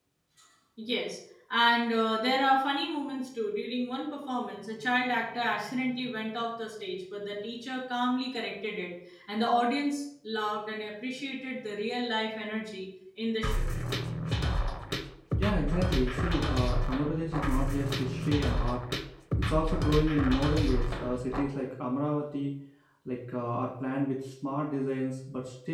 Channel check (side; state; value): both; identical; correlation 1.00